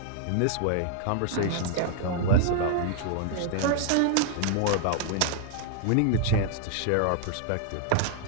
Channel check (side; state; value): both; different; correlation 0.00